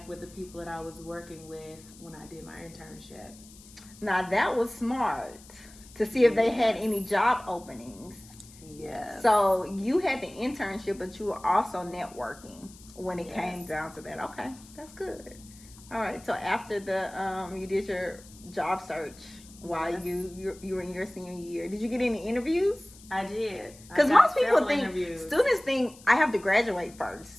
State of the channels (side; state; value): left; noise; hiss, 21 dB below the sound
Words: with the people that I was working with when I did my internship. Now that was smart, to see if they had any job openings. Yes. So you had the internship, but you were also networking when it came down to that. Okay, that's good. All right. So after the you did your job search while you were in your senior year, did you get any interviews? I did. Because most people think, students think I have to graduate